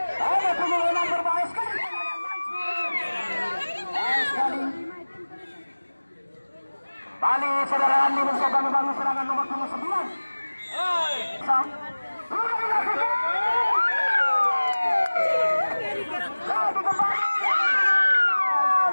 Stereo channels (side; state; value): both; inverted; correlation -1.00